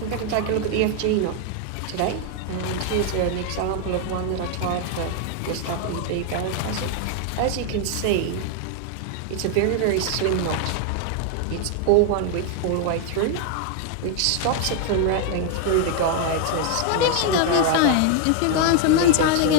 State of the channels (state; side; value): different; both; correlation 0.00